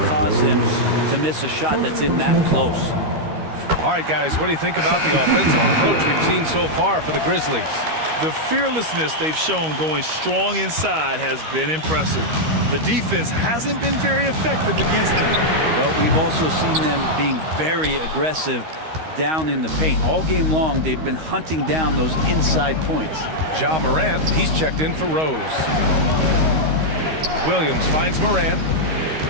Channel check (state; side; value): late; left; 13 ms